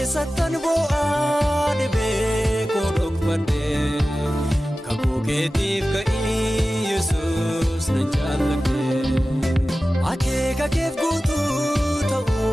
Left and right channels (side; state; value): both; normal; correlation 0.95